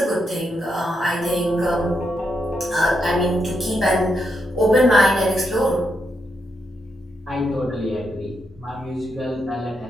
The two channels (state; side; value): normal; both; correlation 0.81